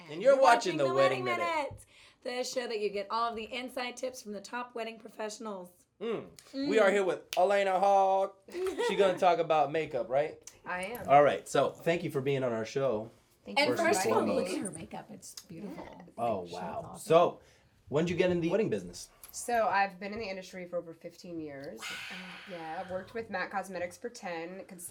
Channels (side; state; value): both; identical; correlation 1.00